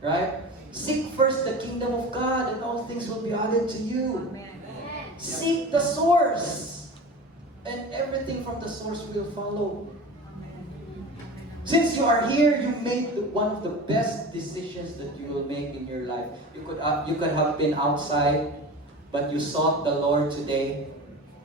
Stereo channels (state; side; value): normal; both; correlation 0.33